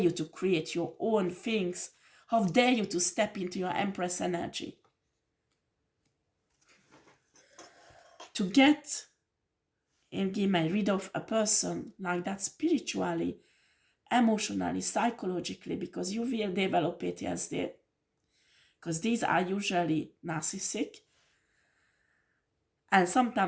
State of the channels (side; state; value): both; identical; correlation 1.00